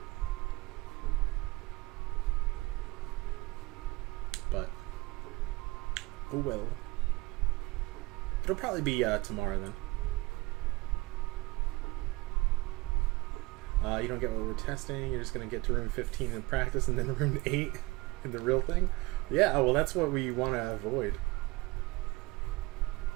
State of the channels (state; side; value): quieter; left; 22.4 dB